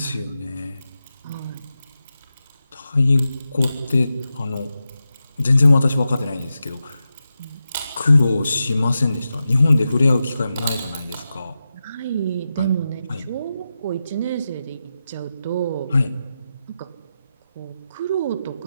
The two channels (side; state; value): both; inverted; correlation -0.90